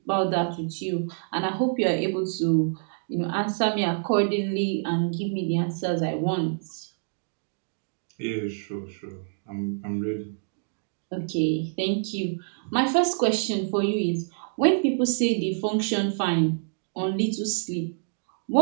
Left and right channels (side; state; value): left; silent; digital silence